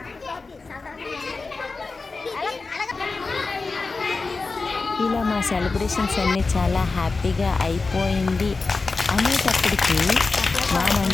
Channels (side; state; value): right; quieter; 4.0 dB